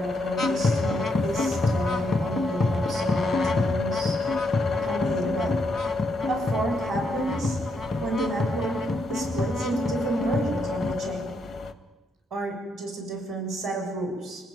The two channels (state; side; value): normal; both; correlation 0.78